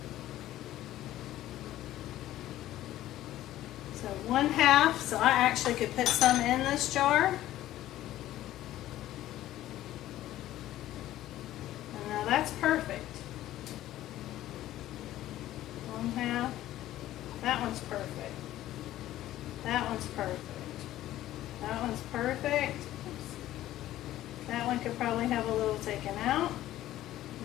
So 1/2. So I actually could put some in this jar. And now that's perfect. 1/2. That one's perfect. That one's perfect. That one's perfect. That one could probably have a little taken out.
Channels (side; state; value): right; quieter; 14.1 dB